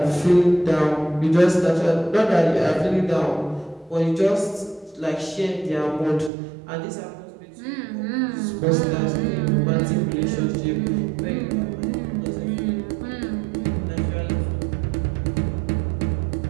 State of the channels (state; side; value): drops out; left; at 6.3 s